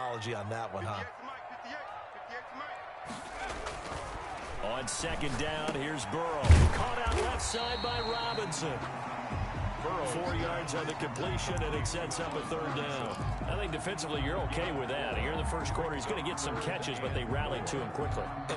on that one, huh? On 2nd down, here's Burrow. Caught out left side by Robinson. Burrow 4 yards on the completion, and it sets up a 3rd down. I think defensively you're okay with that. Here in the first quarter, he's going to get some catches, but they rallied to him quickly.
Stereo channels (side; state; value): both; identical; correlation 1.00